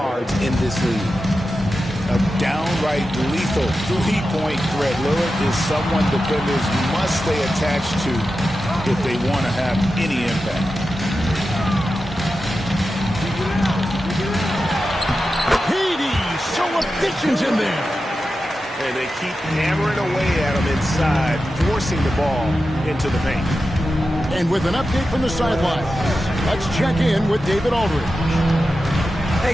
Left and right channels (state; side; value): normal; both; correlation 0.91